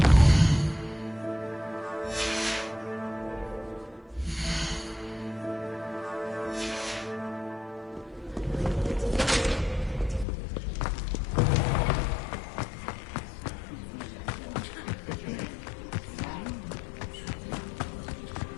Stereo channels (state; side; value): drops out; right; at 10.2 s